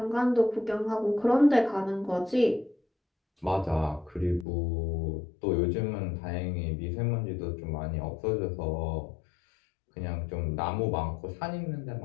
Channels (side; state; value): right; drops out; at 4.5 s